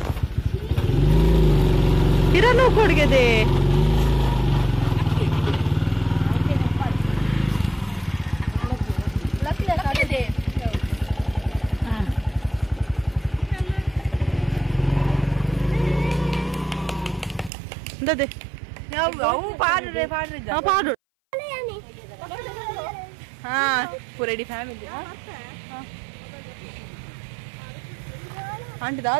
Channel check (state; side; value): drops out; left; at 17.5 s